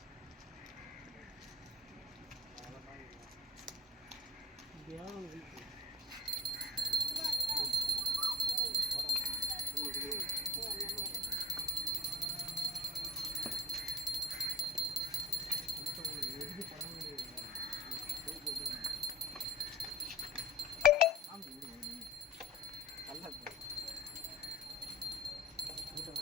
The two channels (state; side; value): normal; both; correlation 0.43